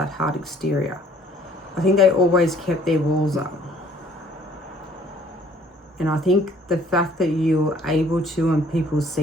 hard exterior. I think they always kept their walls up. And I think the fact that you were able to, and people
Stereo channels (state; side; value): normal; both; correlation 0.58